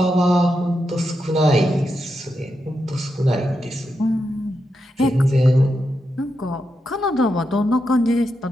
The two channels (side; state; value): both; normal; correlation 0.86